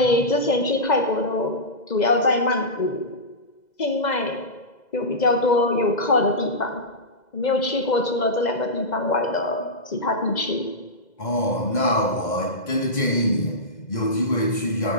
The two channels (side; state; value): right; late; 2.0 ms